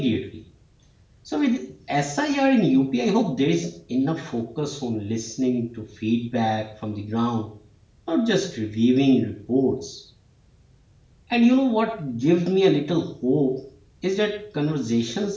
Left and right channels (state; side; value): identical; both; correlation 1.00